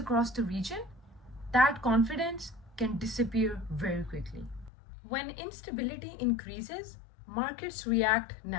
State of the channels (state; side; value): drops out; right; at 4.7 s